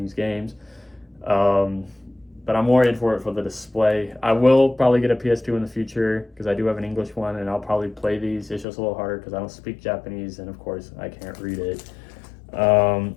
games. But I'm more in for it for the display. I will probably get a PS2 in the future because I do have an English one, and I'll probably play these. It's just a little harder because I don't speak Japanese, and of course I can't read it.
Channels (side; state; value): right; drops out; at 8.7 s